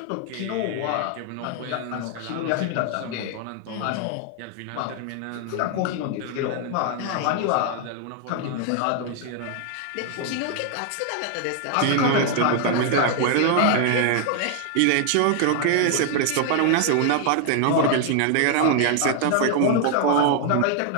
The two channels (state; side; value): different; both; correlation 0.00